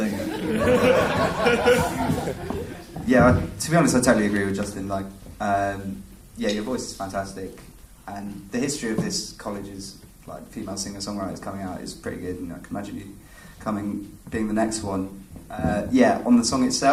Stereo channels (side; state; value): both; identical; correlation 1.00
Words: you go. Yeah, to be honest, I totally agree with Justin. Like, your voice is fantastic, and the history of this college's female singer-songwriters coming out is pretty good. And I can imagine you being the next one. On the song